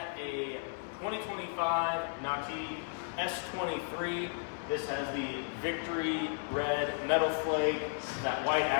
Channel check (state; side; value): silent; right; 55 dB below the other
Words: a 2025 Nautique S23. This has the Victory red metal flake, that white